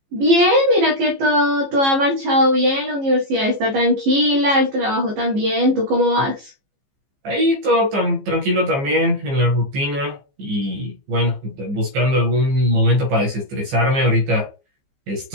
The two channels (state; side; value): late; left; 15 ms